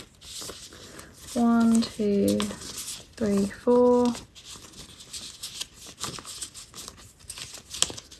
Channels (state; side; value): identical; both; correlation 1.00